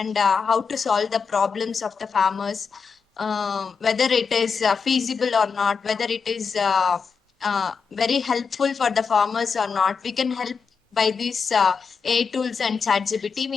how to solve the problems of the farmers, whether it is feasible or not, whether it is very helpful for the farmers or not. We can help by these AI tools and ChatGPT.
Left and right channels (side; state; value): right; quieter; 5.6 dB